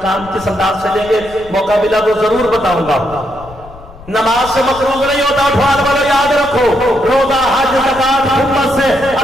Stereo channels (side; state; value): left; noise; rumble, 19 dB below the sound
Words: کس انداز سے لیں گے، موقع ملا تو ضرور بتاؤں گا. نماز سے مقروض نہیں ہوتا. اٹھوان والوں یاد رکھو، روزہ، حج، زکات، خدمت سے